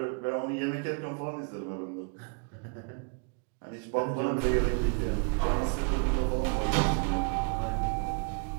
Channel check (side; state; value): left; quieter; 38.7 dB